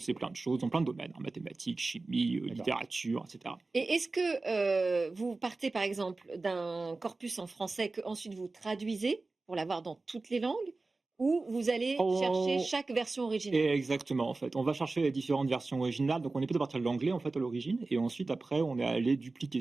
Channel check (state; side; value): quieter; left; 3.5 dB